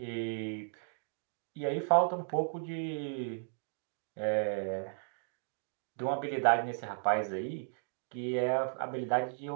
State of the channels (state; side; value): silent; left; digital silence